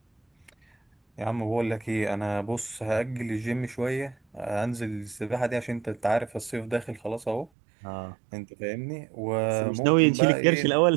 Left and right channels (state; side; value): drops out; left; at 7.5 s